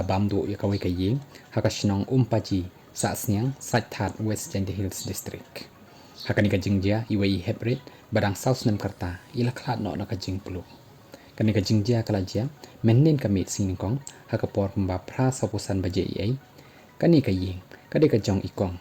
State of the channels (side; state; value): both; identical; correlation 1.00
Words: bam du ya kawei ka iing Sahsniang paji Sahsniang That West Hills District hakani ka jingjia iwei heprit badang Snem karta ila khlat no na ka jing pulu kani ka jingjia kala jia mennen ka mit sing kong hakapor pamba phra sapusan baje ai kani ka iing kade ka jong ikong